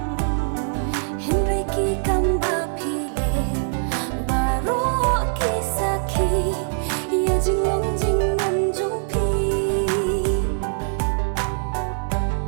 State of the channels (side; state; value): left; silent; digital silence